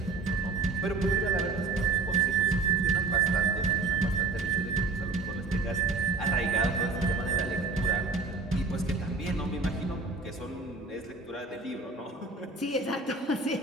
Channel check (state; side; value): quieter; left; 3.9 dB